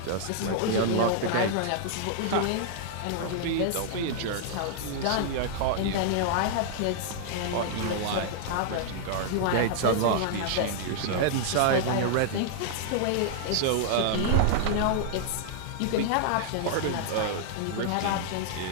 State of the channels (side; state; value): both; different; correlation -0.01